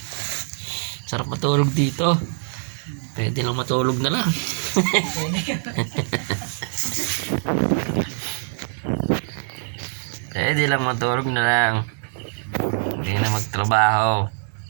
Sarap matulog dito. Pwede lang matulog na lang. Pwede lang matulog na lang. Hindi na magtrabaho.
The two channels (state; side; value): silent; left; digital silence